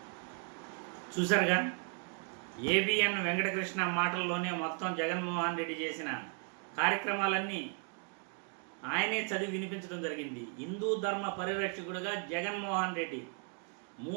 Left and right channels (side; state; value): left; quieter; 39.3 dB